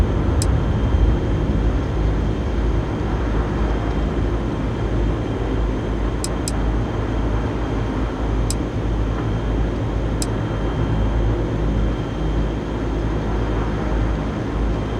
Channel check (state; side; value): identical; both; correlation 1.00